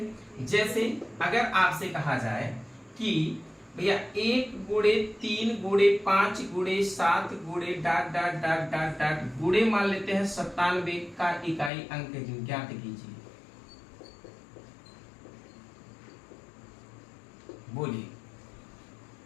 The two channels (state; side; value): drops out; right; at 11.7 s